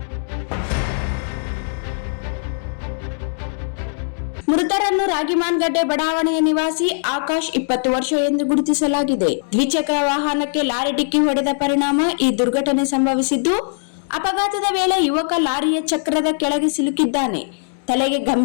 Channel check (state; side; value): silent; right; digital silence